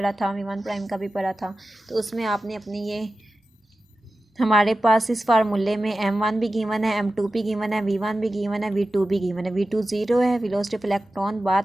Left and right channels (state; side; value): normal; both; correlation 0.94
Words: था, v1 प्राइम का भी पढ़ा था। तो उसमें आपने अपनी ये हमारे पास इस फार्मूले में m1 भी गिवन है, m2 भी गिवन है, v1 भी गिवन है, v2 भी गिवन है। v2 ज़ीरो है, वेलोसिटी ऑफ इलेक्ट्रॉन